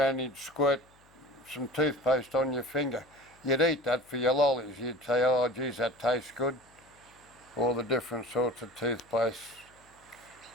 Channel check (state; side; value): noise; left; hum, 30 dB below the sound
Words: he'd squirt some toothpaste on your finger. You'd eat that for your lollies. You'd say, oh geez, that tastes good. All the different sorts of toothpaste.